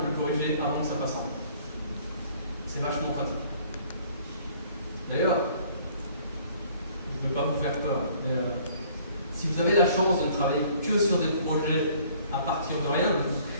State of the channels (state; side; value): inverted; both; correlation -0.57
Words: corriger avant que ça passe en prod. C'est vachement pratique. D'ailleurs, je ne veux pas vous faire peur, mais si vous avez la chance de ne travailler que sur des projets à partir de rien, de